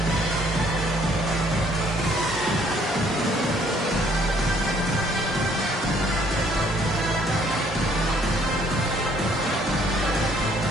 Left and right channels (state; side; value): normal; both; correlation 0.63